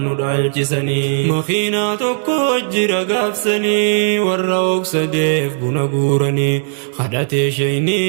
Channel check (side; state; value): left; silent; 68 dB below the other